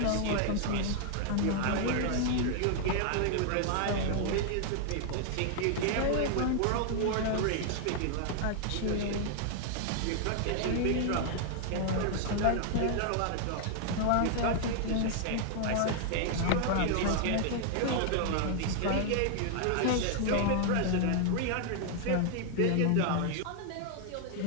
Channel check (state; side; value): different; both; correlation 0.00